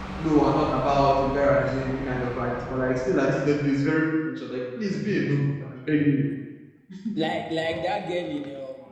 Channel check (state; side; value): identical; both; correlation 1.00